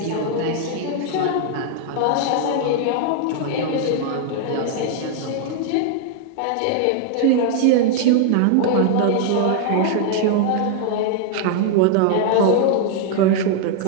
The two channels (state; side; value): different; both; correlation 0.00